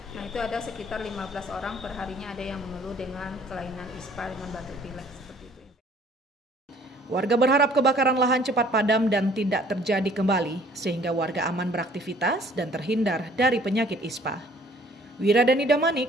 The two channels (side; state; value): both; normal; correlation 0.56